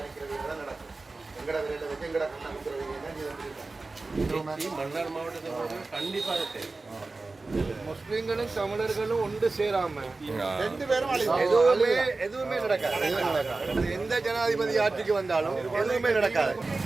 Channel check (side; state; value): left; quieter; 3.5 dB